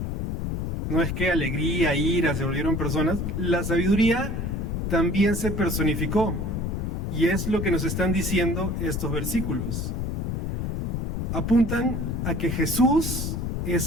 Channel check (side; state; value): left; noise; rumble, 2 dB below the sound